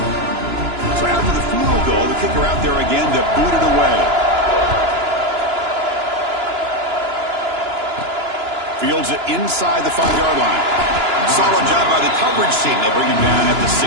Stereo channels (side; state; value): left; late; 2.9 ms